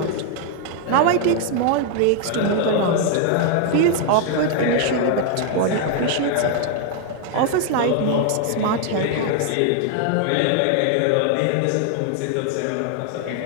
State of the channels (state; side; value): different; both; correlation 0.00